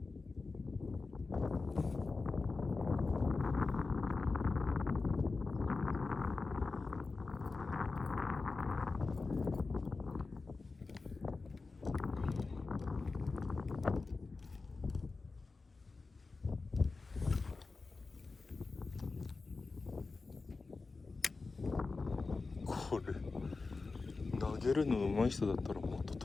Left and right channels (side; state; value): right; quieter; 4.0 dB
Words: これ投げるの上手い人だったらもっと